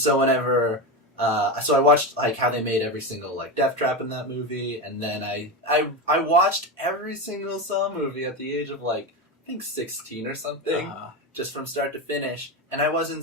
whenever... so I watched, how they made every single, death trap in that movie, and then I watched every single Saw movie at the age of, I think 16 or something, just from start to finish, and I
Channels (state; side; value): normal; both; correlation 0.18